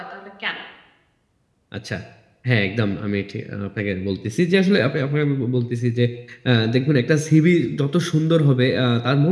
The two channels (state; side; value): identical; both; correlation 1.00